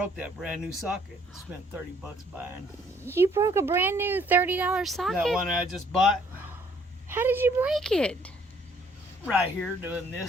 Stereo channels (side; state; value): both; normal; correlation 0.63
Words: that brand new socket. Spent $30 buying. You broke a brand new $30 socket? That one I just bought. How did you break it? Right here doing